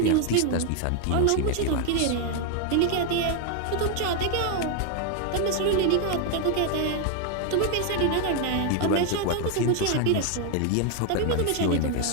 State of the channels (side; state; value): both; different; correlation 0.01